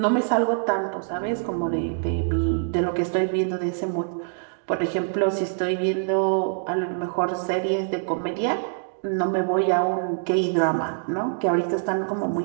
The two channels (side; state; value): left; silent; digital silence